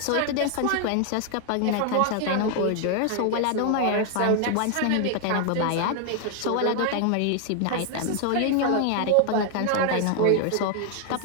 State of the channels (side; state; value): both; different; correlation 0.00